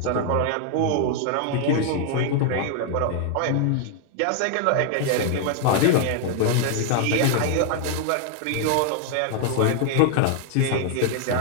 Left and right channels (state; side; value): different; both; correlation 0.00